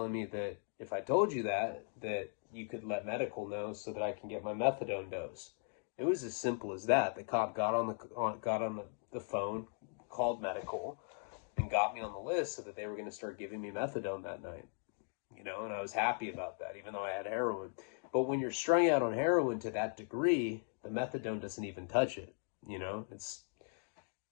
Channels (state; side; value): silent; right; 52 dB below the other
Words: me that if I told you that you could let medical know so that I can get my methadone dose. It was as simple as that. The cop got on the phone, called medical, and got me on the list so that they were going to start giving me methadone that night. You know, and I was happy about that, even though I had heroin. But when you're strung out on heroin to that degree, the methadone doesn't even touch it. You know,